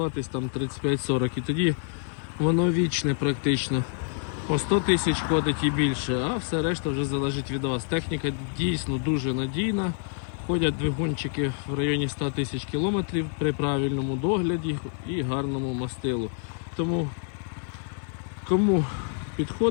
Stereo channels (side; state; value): right; silent; 60 dB below the other